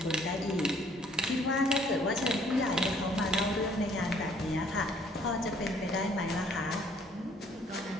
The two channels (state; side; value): normal; both; correlation 0.61